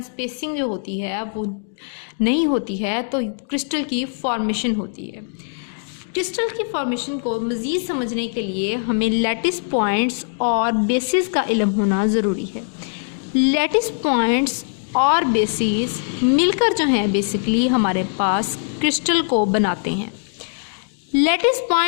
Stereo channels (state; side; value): silent; right; digital silence